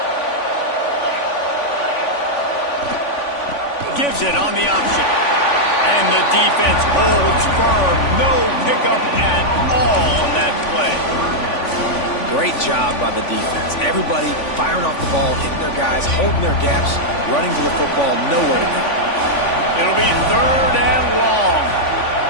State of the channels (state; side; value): late; right; 3.5 ms